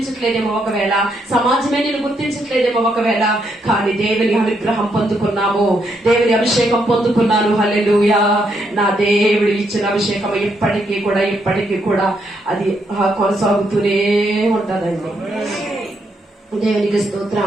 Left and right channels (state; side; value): normal; both; correlation 0.77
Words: ఒకవేళ సమాజమే నిన్ను గుర్తించట్లేదేమో, ఒకవేళ కానీ దేవుని అనుగ్రహం పొందుకున్నాము, దేవుని అభిషేకం పొందుకున్నాను. హల్లెలూయా. నా దేవుడు ఇచ్చిన అభిషేకం ఇప్పటికీ కూడా అది కొనసాగుతూనే ఉంటదండి. దేవునికి